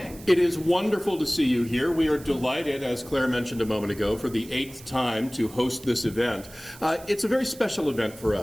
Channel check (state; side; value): noise; right; hiss, 19 dB below the sound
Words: It is wonderful to see you here. We are delighted, as Claire mentioned a moment ago, for the 8th time to host this event. It's a very special event for